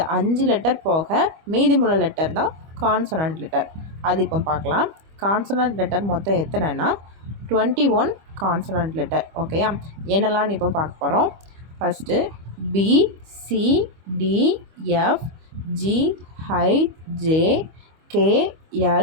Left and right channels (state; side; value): late; left; 25 ms